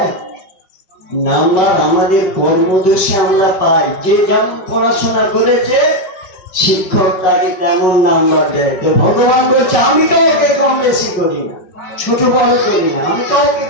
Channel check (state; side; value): late; right; 5.5 ms